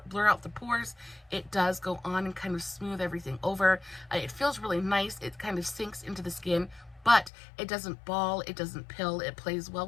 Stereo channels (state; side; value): drops out; right; at 7.3 s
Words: out the pores. It does go on and kind of smooth everything over. It feels really nice. It kind of sinks into the skin, but it doesn't ball, it doesn't pill, it plays well